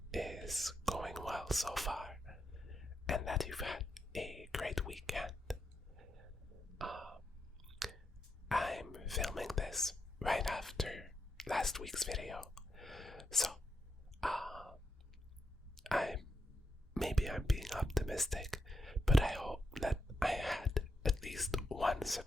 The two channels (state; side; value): normal; both; correlation 0.84